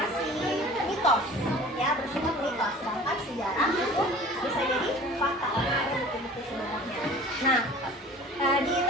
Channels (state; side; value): normal; both; correlation 0.44